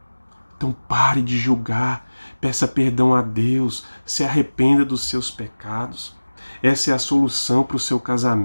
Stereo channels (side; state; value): both; inverted; correlation -1.00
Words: Então pare de julgar, peça perdão a Deus, se arrependa dos seus pecados. Essa é a solução para o seu